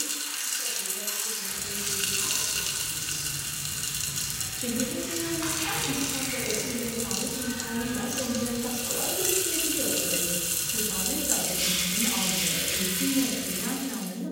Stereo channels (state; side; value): identical; both; correlation 1.00